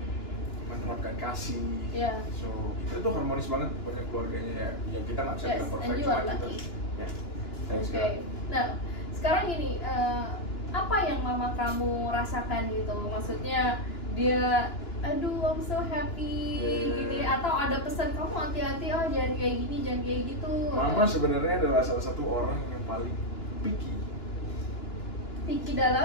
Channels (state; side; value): late; right; 2.9 ms